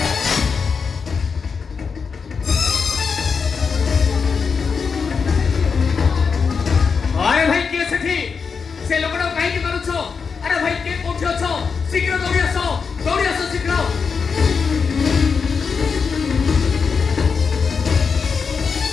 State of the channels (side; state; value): right; quieter; 5.6 dB